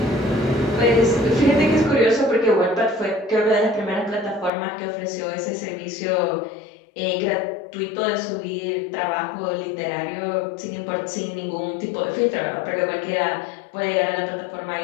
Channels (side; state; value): right; drops out; at 4.5 s